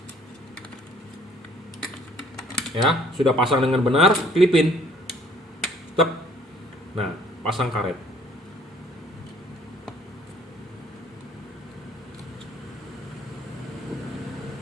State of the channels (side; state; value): both; normal; correlation 0.58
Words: Ya, sudah pasang dengan benar, klipin. Tep. Nah, pasang karet.